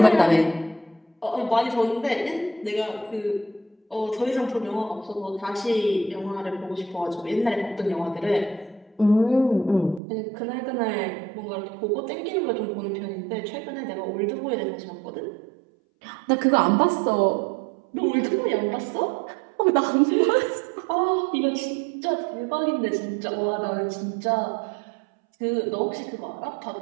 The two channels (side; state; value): left; drops out; at 10.0 s